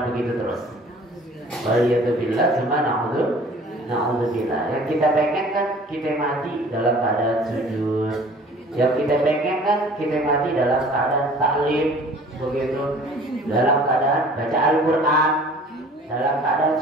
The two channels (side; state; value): both; normal; correlation 0.49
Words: begitu terus. Waliyadzubillah, cuma na'udzubillah. Yang kita pengen kan kita mati dalam keadaan sujud. Yang kita pengen kan kita mati dalam keadaan taklim, begitu, dalam keadaan baca Al-Quran, dalam keadaan